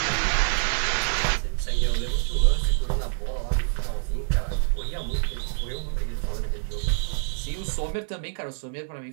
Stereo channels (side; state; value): left; silent; digital silence